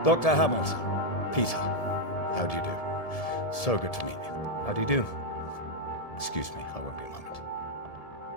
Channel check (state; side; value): late; right; 1.7 ms